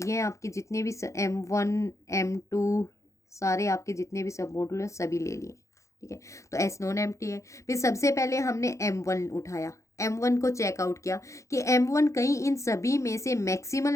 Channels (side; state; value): right; late; 0.15 ms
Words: हैं आपके जितने भी M1 M2 सारे आपके जितने भी सब मॉडुल हैं सभी ले लिए। ठीक है, तो S नॉन एम्प्टी है। फिर सबसे पहले हमने M1 उठाया, M1 को चेकआउट किया कि M1 कहीं इन सभी में से